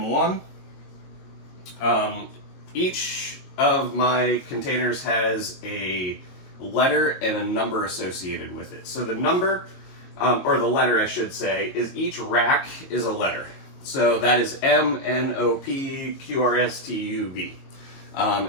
Each of my containers has a letter and a number associated with it. So the number, or the letter I should say, is each rack is a letter. So that is M, N, O, P, Q, R, S, T, U, V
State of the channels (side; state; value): right; late; 22 ms